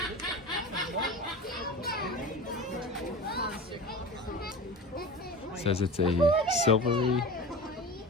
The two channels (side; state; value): both; normal; correlation 0.32